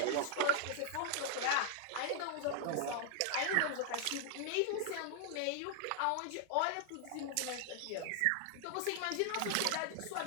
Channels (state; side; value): different; both; correlation 0.00